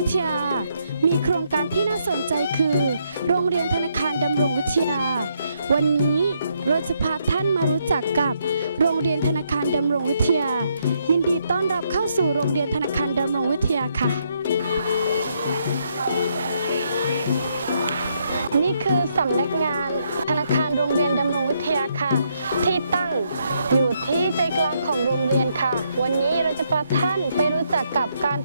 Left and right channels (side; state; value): both; inverted; correlation -0.75